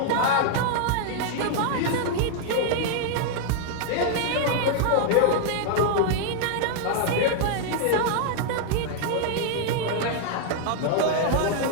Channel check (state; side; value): different; both; correlation 0.00